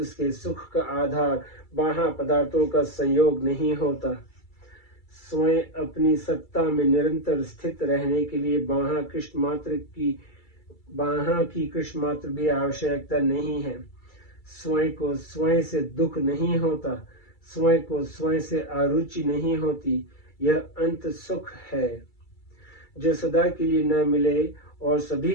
सुख का आधार बाह्य पदार्थों का संयोग नहीं होता। स्वयं अपनी सत्ता में निरंतर स्थित रहने के लिए बाह्य की कृष्ण मात्र भी आवश्यकता नहीं है। स्वयं को स्वयं से दुख नहीं होता, स्वयं को स्वयं से अरुचि नहीं होती। यह अंत सुख है। जो सदा के लिए न मिले और सभी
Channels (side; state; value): right; late; 2.3 ms